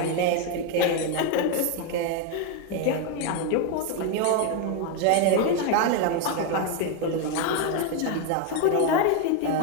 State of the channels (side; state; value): both; different; correlation 0.02